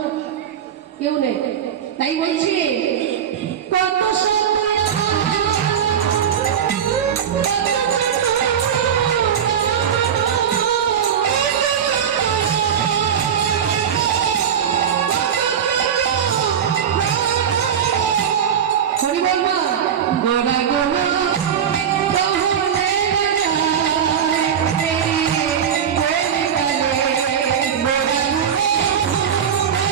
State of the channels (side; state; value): left; quieter; 8.4 dB